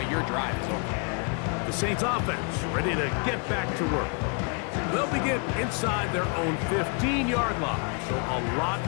your drive is over. The Saints offense ready to get back to work. They'll begin inside their own 15-yard line, so a lot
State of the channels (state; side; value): quieter; right; 37.3 dB